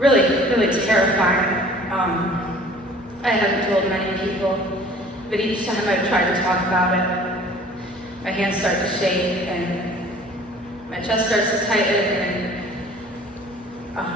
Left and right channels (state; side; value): normal; both; correlation 0.49